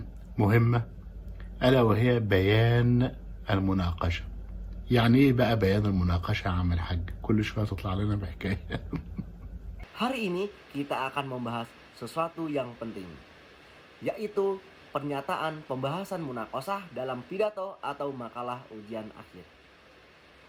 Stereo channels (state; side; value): identical; both; correlation 1.00